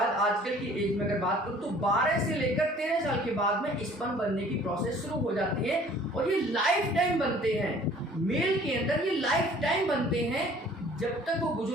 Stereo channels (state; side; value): normal; both; correlation 0.52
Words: आजकल की एज में अगर बात करूँ तो 12 से लेकर 13 साल के बाद में स्पर्म बनने की प्रोसेस शुरू हो जाती है। और ये लाइफ टाइम बनते हैं, मेल के अंदर ये लाइफ टाइम बनते हैं, जब तक वो